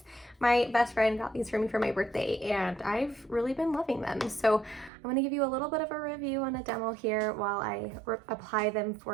My best friend got these for me for my birthday and I've really been loving them. So I'm going to give you a little bit of a review and a demo here while I apply them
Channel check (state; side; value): drops out; left; at 4.9 s